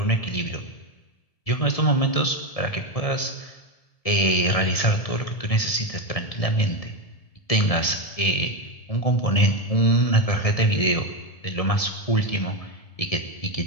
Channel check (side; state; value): right; late; 1.7 ms